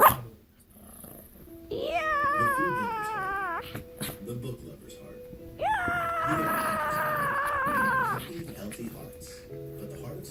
Yeah. The book lover's heart. Happy, healthy hearts. But the heart of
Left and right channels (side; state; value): both; identical; correlation 1.00